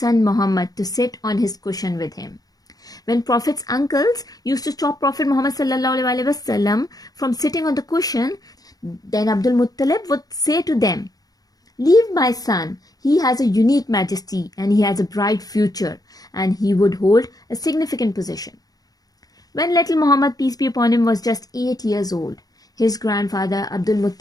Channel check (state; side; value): late; right; 0.18 ms